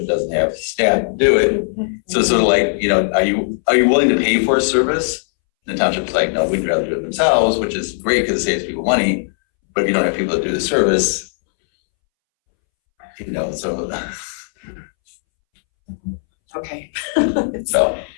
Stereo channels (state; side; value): silent; right; 66 dB below the other